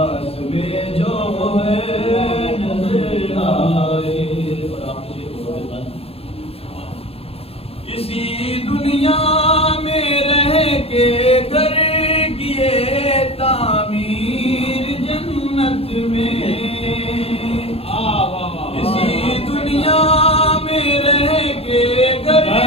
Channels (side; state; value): right; late; 0.28 ms